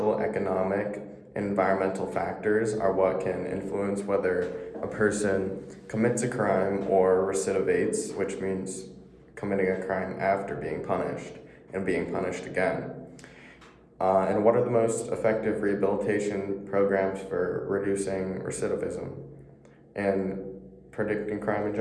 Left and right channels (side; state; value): both; identical; correlation 1.00